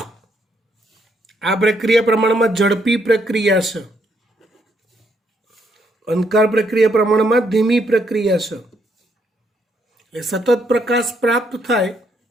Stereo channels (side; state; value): both; normal; correlation 0.74